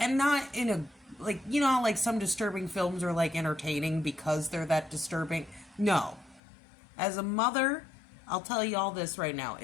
not in a, like, you know, like some disturbing films are like entertaining because they're that disturbing. No. As a mother, I'll tell you all this right now.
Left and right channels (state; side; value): drops out; right; at 6.4 s